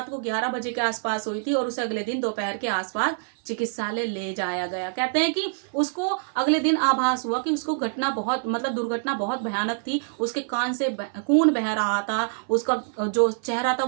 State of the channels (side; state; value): left; silent; 56 dB below the other